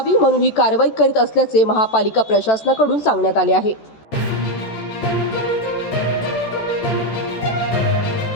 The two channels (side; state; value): right; late; 14 ms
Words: म्हणून ही कारवाई करीत असल्याचे महापालिका प्रशासनाकडून सांगण्यात आले आहे।